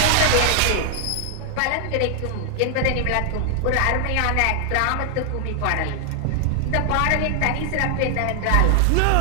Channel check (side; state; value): both; different; correlation 0.00